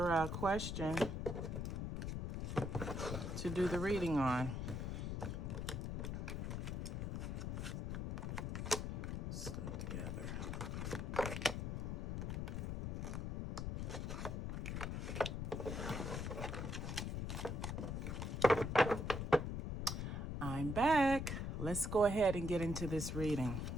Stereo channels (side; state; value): left; noise; rumble, 2 dB below the sound